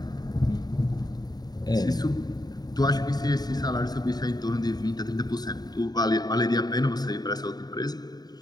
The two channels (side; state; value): right; late; 0.19 ms